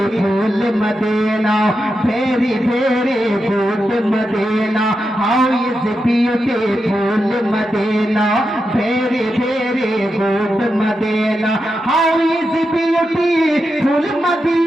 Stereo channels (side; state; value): both; normal; correlation 0.88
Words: Medina? Very very good Medina. How is the beautiful Medina? Very very good Medina. How is the beautiful